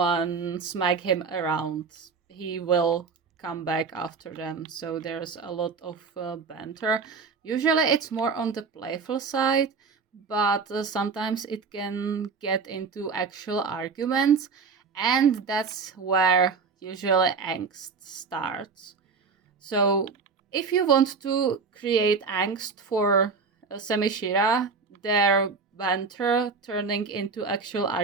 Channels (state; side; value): quieter; left; 5.0 dB